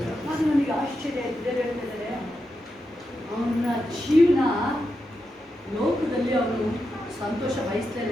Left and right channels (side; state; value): both; normal; correlation 0.87